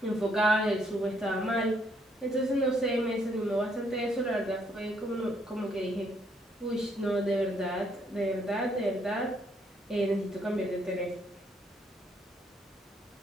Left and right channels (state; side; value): normal; both; correlation 0.70